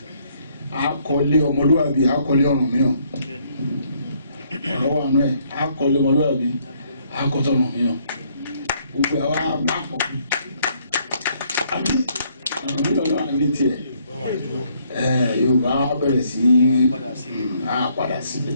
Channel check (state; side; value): inverted; both; correlation -0.68